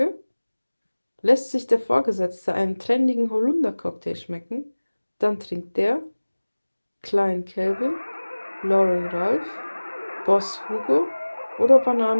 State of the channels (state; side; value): inverted; both; correlation -1.00